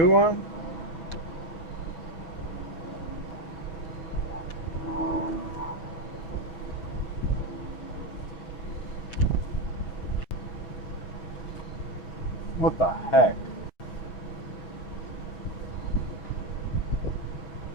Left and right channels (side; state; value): right; late; 6.3 ms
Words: one. What the heck?